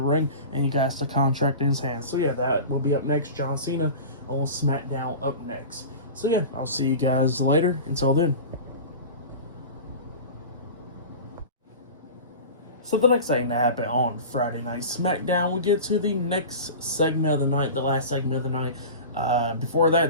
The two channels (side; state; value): both; inverted; correlation -0.33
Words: and he got the contract in his hands. So yeah, that will be up next. John Cena on SmackDown up next. So yeah, I'll see you guys later. Until then. So the next thing that happened on Friday Night SmackDown, we get to the next segment of the night, the last segment of the night. Before that,